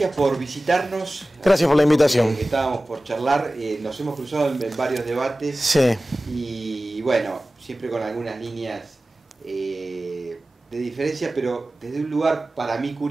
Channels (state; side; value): normal; both; correlation 0.97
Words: por visitarnos. Gracias por la invitación. Estábamos por charlar, nos hemos cruzado en varios debates. Sí. Y bueno, siempre con algunas líneas de diferencia, pero desde un lugar para mí